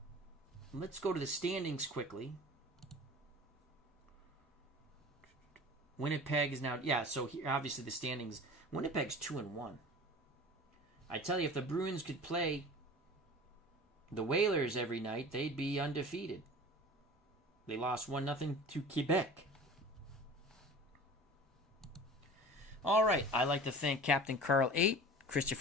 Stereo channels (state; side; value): normal; both; correlation 0.39